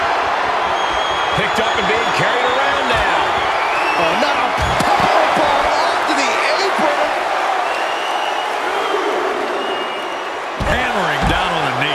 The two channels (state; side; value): identical; both; correlation 1.00